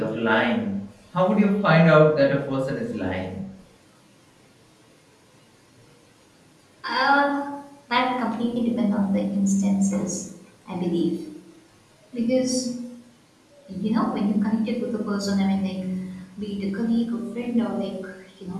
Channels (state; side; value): identical; both; correlation 1.00